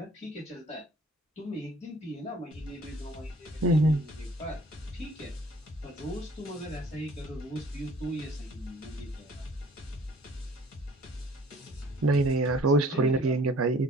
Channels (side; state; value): both; normal; correlation 0.53